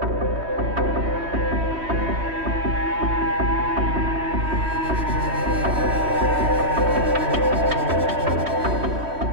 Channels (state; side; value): late; left; 3.1 ms